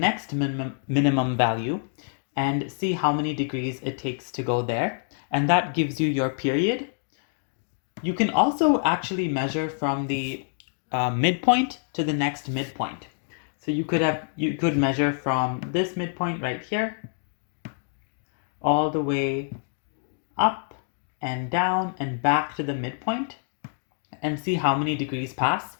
minimum value and see how many degrees it takes to go there. And that gives you your period. You can also actually measure from the midpoint to the next midpoint. So you could measure from this midpoint right here all the way up and down and back to the midpoint and see how many degrees pass.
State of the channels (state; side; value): silent; right; digital silence